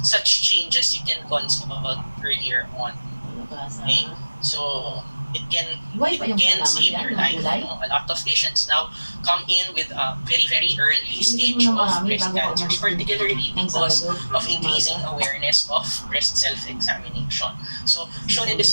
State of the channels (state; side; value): inverted; both; correlation -1.00